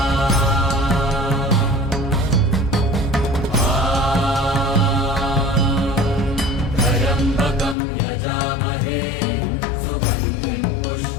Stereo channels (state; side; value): drops out; right; at 7.8 s